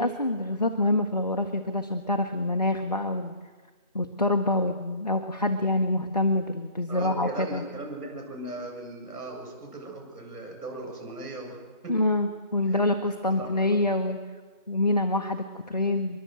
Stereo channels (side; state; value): both; inverted; correlation -0.48